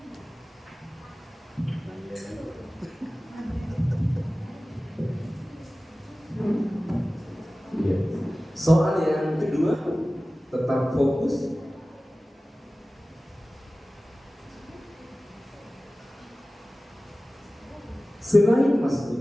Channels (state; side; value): normal; both; correlation 0.97